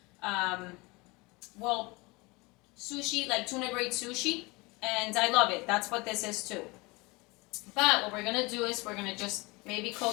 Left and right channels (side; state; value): right; quieter; 25.1 dB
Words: well, sushi, like tuna grade sushi, and I love it. That's what this is too. But what we're gonna do is we're gonna just maybe